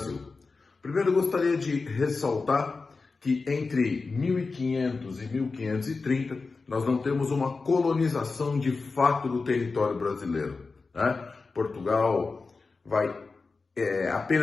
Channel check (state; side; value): quieter; right; 4.2 dB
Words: Primeiro, eu gostaria de ressaltar que entre 1500 e 1530 nós não temos uma colonização de fato do território brasileiro, né? Portugal vai